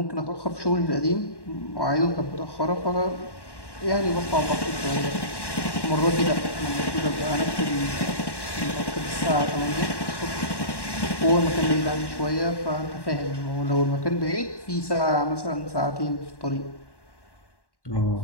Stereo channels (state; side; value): late; right; 1.1 ms